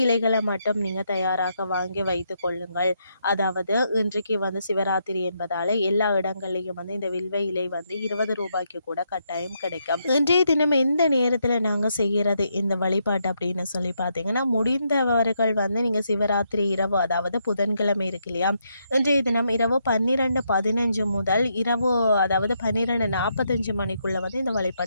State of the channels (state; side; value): inverted; both; correlation -0.79